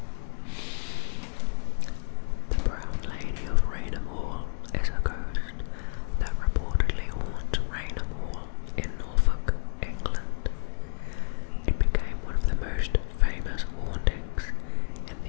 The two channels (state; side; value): silent; right; 56 dB below the other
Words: The Brown Lady of Raynham Hall is a ghost that reportedly haunts Raynham Hall in Norfolk, England. It became one of the most famous hauntings in